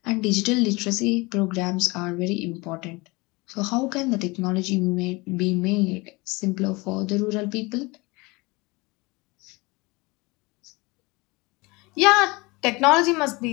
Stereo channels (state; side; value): quieter; right; 24.7 dB